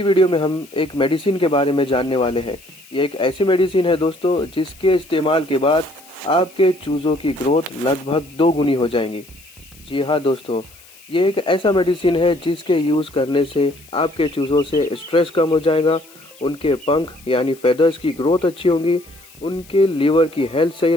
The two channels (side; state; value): left; noise; hiss, 24 dB below the sound